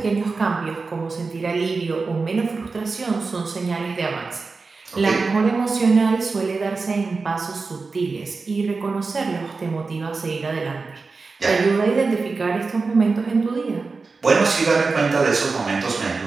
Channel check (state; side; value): quieter; left; 4.2 dB